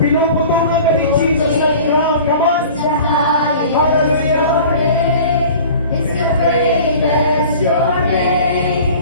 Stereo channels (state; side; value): inverted; both; correlation -0.43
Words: Pinuputungan ka ni Jesus ng crown. Come on. Hallelujah. Your